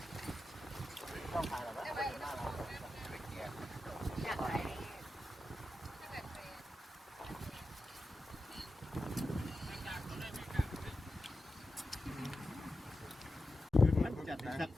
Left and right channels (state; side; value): normal; both; correlation 0.91